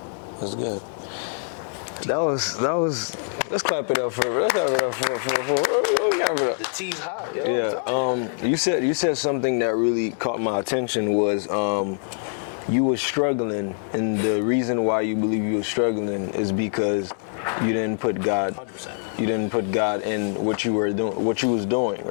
That's good. That was. Let's clap it up for. Let's clap it up for. The tea's hot, yo. Yeah. I'm telling you. You said something that really caught my attention was you were struggling, and the reason why you believe you were struggling is because you didn't put God. 100%. You didn't put God in what you were doing, what you was doing,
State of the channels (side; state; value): right; silent; digital silence